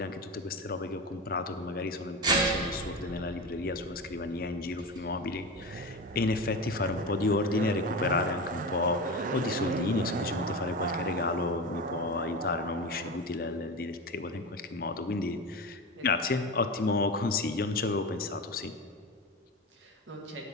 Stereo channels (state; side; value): normal; both; correlation 0.24